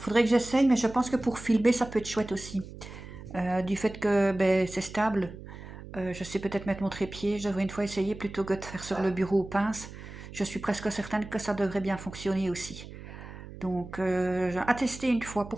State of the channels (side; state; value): right; noise; hum, 14 dB below the sound